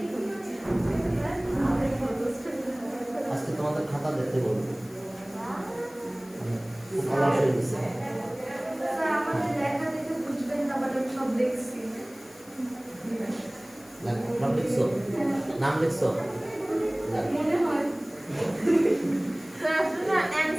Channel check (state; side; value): noise; left; hiss, 23 dB below the sound